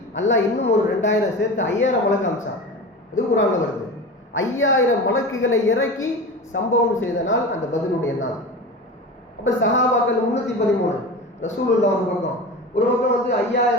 அல்லாஹ் இன்னும் ஒரு 2000 சேர்த்து 5000 மலக்கு அமிச்சான். இது குர்ஆன்ல வருது. 5000 மலக்குகளை இறக்கி சம்பவம் செய்த நாள் அந்த பத்ருடைய நாள். அப்ப சஹாபாக்கள் 313, ரசூலுல்லாஹ் ஒரு பக்கம்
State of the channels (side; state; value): both; normal; correlation 0.30